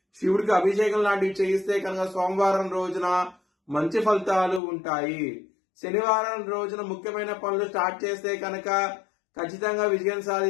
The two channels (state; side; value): drops out; right; at 4.6 s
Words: శివుడికి అభిషేకం లాంటివి చేయిస్తే కనుక సోమవారం రోజున మంచి ఫలితాలు ఉంటాయి. శనివారం రోజున ముఖ్యమైన పనులు స్టార్ట్ చేస్తే కనుక ఖచ్చితంగా విజయం